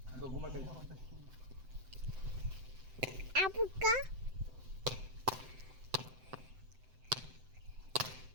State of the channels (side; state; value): left; late; 7.8 ms